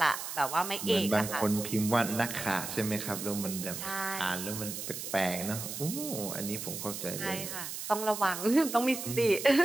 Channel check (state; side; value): noise; right; hiss, 7 dB below the sound